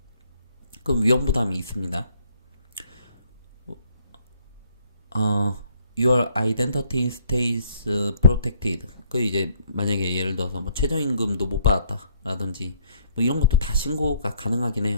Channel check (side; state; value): both; inverted; correlation -0.67